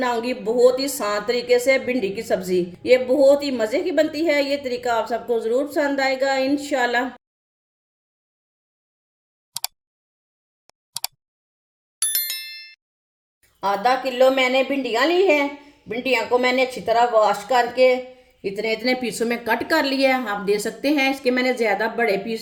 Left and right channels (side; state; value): both; identical; correlation 1.00